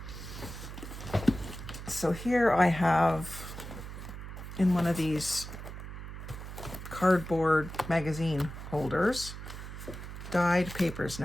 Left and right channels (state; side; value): noise; right; hum, 10 dB below the sound